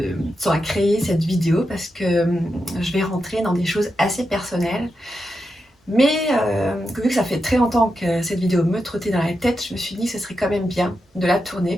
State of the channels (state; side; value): normal; both; correlation 0.87